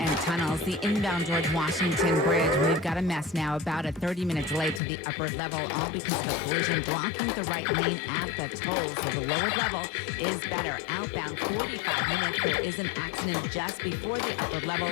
tunnels. The inbound George Washington Bridge, we've got a mess now, about a 30-minute delay to the upper level, all because of a collision blocking the right lane at the toll. So the lower level is better. Outbound, 45 minutes. There is an accident just before the upper level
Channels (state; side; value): drops out; right; at 4.8 s